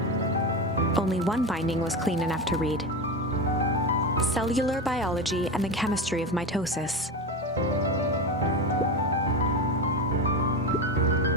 Only one binding was clean enough to read. Cellular Biology and the Chemistry of Mitosis.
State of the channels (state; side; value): normal; both; correlation 0.20